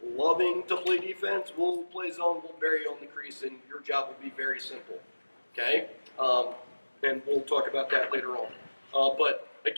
loving to play defense, we'll play zone, we'll bury you on the crease, and your job will be very simple, okay? And we'll talk about that later on. But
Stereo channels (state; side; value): inverted; both; correlation -1.00